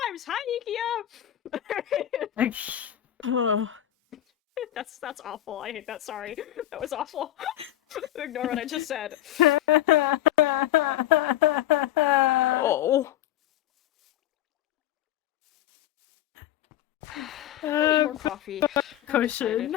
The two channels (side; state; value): right; quieter; 13.0 dB